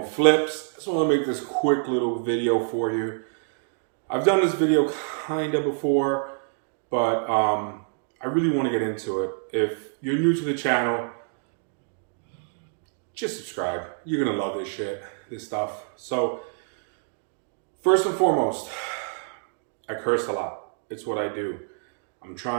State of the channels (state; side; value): silent; left; digital silence